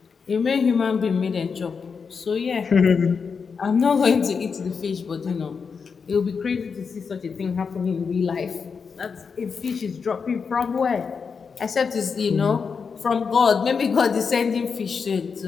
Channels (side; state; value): right; quieter; 5.6 dB